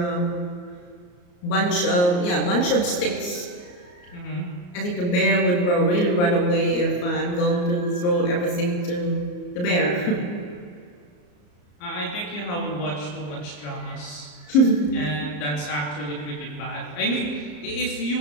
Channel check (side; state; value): right; late; 34 ms